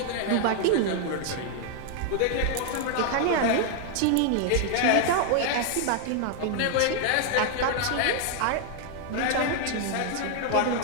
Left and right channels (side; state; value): both; different; correlation 0.00